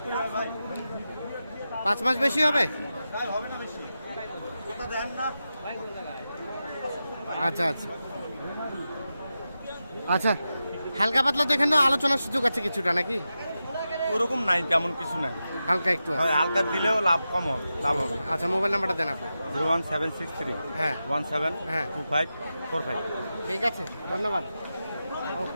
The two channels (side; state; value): both; inverted; correlation -0.91